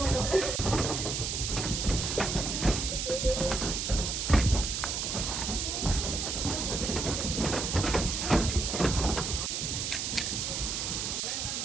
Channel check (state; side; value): noise; right; hiss, 2 dB below the sound